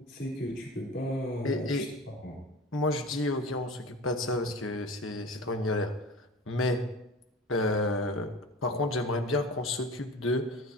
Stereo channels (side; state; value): both; normal; correlation 0.35